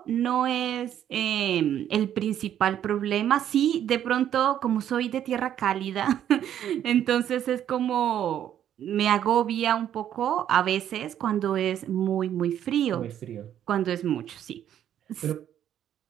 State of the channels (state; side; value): quieter; left; 10.4 dB